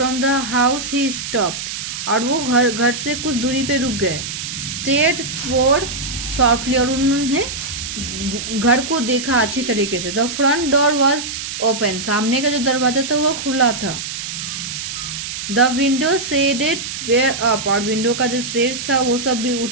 the house he stopped, और वो घर से कुछ दूरी पे रुक गए। स्टेड स्वोर्ड सॉफ्टली, और उन्होंने घर को देखा अच्छी तरीके से। The front door was open, सामने का जो दरवाजा था वो खुला था। The window shaded were up, और विंडो का जो शेड था वो सब भी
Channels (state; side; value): noise; right; hiss, 6 dB below the sound